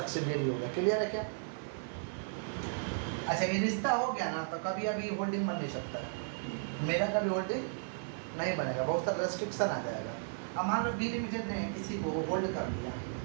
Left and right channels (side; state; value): left; silent; 55 dB below the other